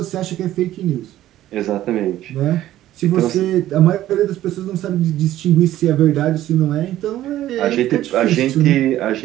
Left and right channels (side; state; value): left; quieter; 13.7 dB